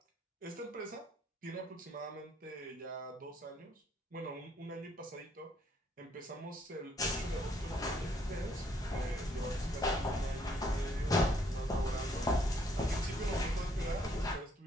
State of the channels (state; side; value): normal; both; correlation 0.68